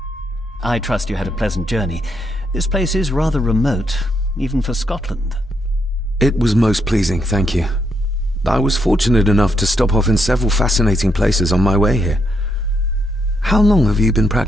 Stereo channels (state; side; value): normal; both; correlation 0.78